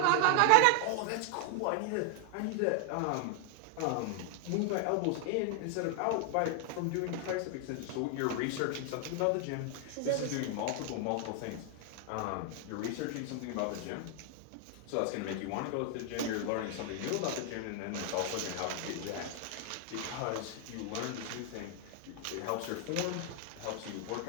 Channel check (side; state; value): both; different; correlation 0.00